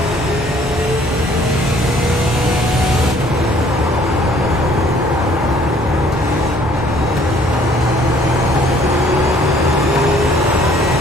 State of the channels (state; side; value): normal; both; correlation 0.58